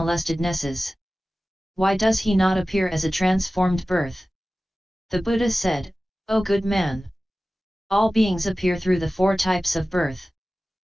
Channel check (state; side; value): normal; both; correlation 0.96